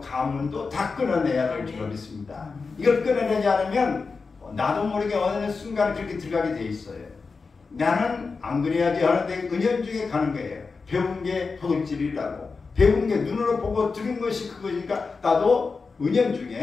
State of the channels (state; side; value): quieter; right; 4.6 dB